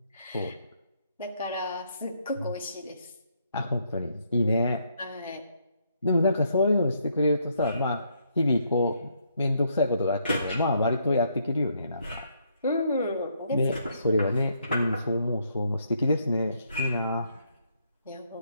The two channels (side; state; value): both; inverted; correlation -0.73